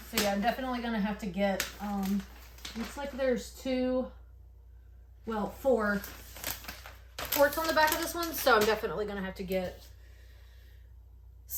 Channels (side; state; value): both; identical; correlation 1.00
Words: yeah, I'm definitely gonna have to get, looks like there's four ports on the back of this one, so I'm definitely gonna have to get